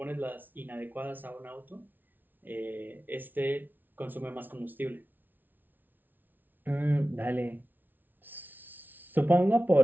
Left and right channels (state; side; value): late; left; 0.087 ms